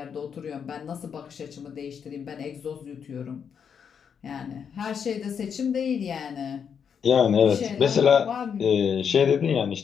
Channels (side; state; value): right; quieter; 7.2 dB